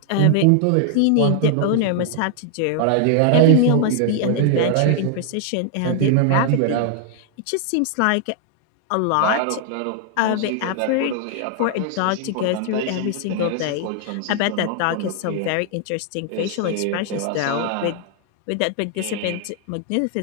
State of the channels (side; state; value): both; different; correlation 0.00